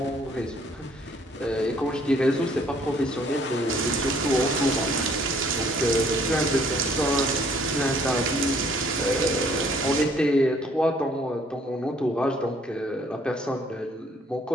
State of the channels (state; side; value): normal; both; correlation 0.61